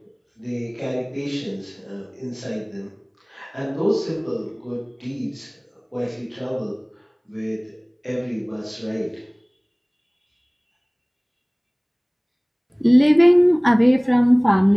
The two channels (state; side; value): identical; both; correlation 1.00